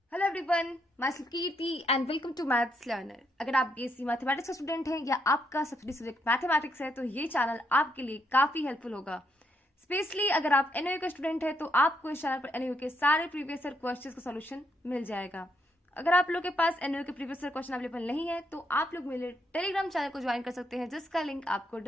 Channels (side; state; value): both; normal; correlation 0.77